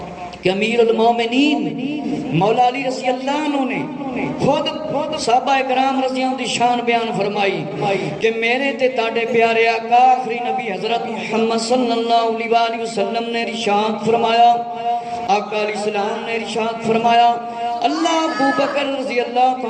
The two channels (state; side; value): identical; both; correlation 1.00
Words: کہ امیر المومنین مولا علی رضی اللہ عنہ نے خود صحابہ اکرام رضی اللہ عنہ دی شان بیان فرمائی کہ میرے تے تاڑے پیارے آقا آخری نبی حضرت محمد صلی اللہ علیہ وسلم نے ارشاد فرمایا، آقا علیہ السلام نے ارشاد فرمایا اللہ ابو بکر رضی اللہ